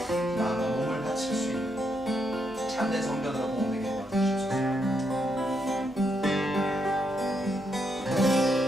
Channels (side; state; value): both; normal; correlation 0.79